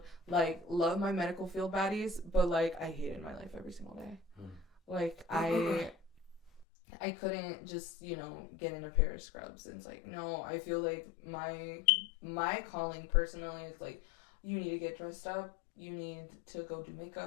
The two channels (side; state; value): right; drops out; at 6.7 s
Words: like, love my medical field baddies, but like I hated my life every single day. Like, I couldn't just, get in a pair of scrubs. And it's like, no, I feel like my calling personally is like, you need to get dressed up. You need to go do